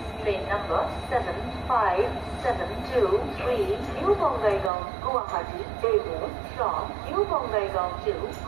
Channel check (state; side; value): drops out; left; at 4.7 s